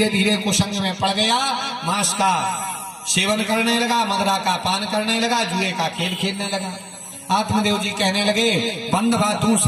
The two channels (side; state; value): both; identical; correlation 1.00